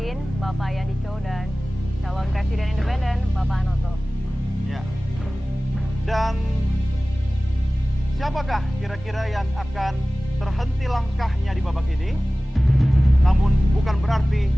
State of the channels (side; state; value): both; normal; correlation 0.98